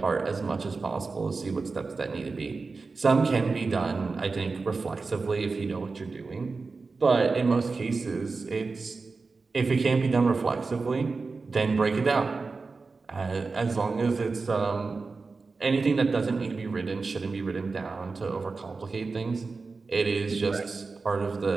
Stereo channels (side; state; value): left; quieter; 4.2 dB